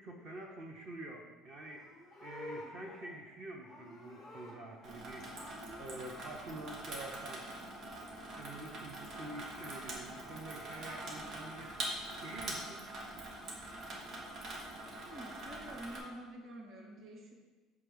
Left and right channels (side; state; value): both; normal; correlation 0.57